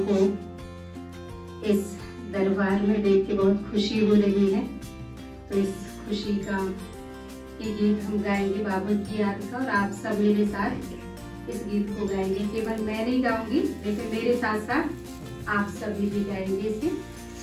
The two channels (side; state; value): both; identical; correlation 1.00